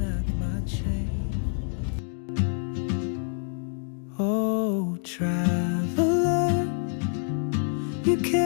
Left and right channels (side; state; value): right; silent; digital silence